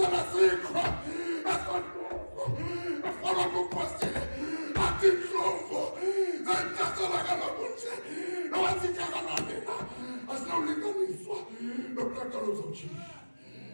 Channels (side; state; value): both; inverted; correlation -1.00